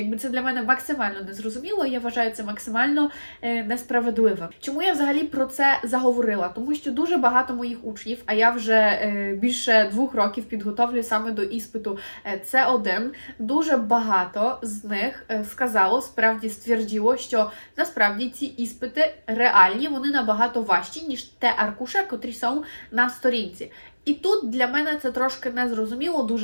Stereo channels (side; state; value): both; inverted; correlation -1.00